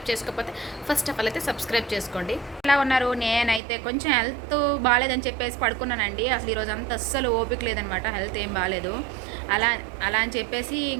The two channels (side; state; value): left; drops out; at 3.6 s